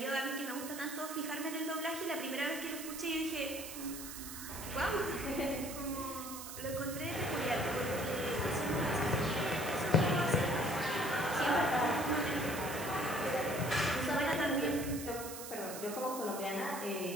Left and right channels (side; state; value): right; noise; hiss, 9 dB below the sound